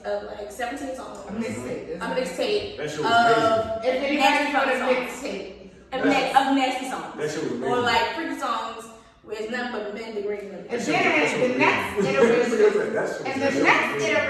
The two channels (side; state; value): both; identical; correlation 1.00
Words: like 17 songs. A mixtape. A mixtape. That shit was amazing. If anybody got a mixtape. Of nasty songs. That shit was amazing. Or like freaky songs where it's nothing but men degrading them. And then the next